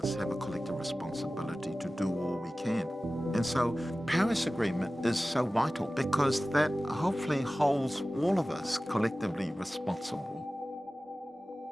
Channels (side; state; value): both; normal; correlation 0.96